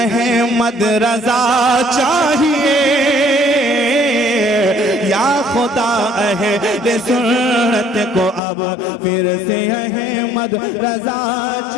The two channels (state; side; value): drops out; right; at 8.4 s